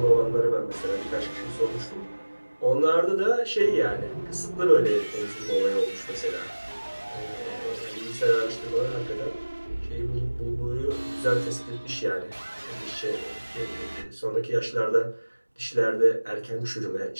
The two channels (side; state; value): both; inverted; correlation -1.00